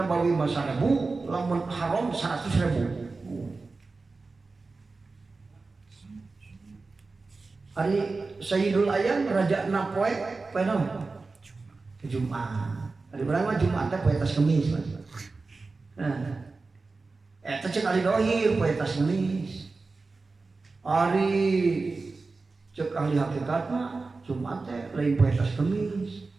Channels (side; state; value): left; quieter; 3.9 dB